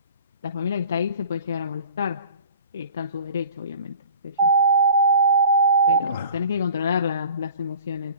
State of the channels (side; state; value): both; inverted; correlation -0.44